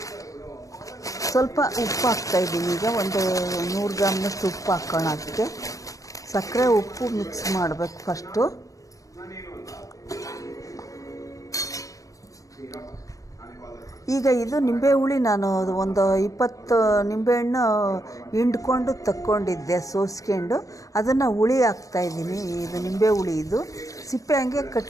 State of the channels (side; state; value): right; late; 0.16 ms